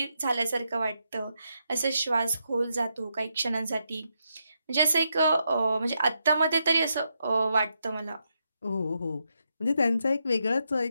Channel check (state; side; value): inverted; both; correlation -0.82